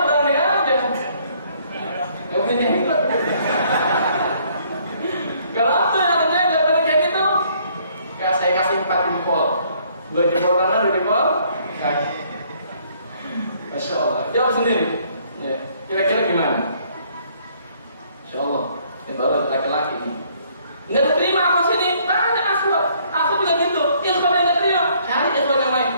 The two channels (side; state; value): both; inverted; correlation -0.64